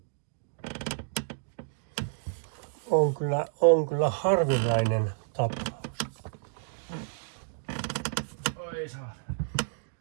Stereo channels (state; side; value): silent; left; digital silence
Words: On kyllä harvinainen tapaus. Oi saa.